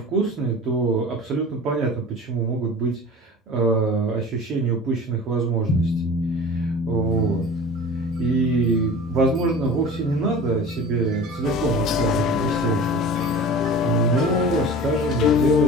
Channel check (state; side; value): normal; both; correlation 0.38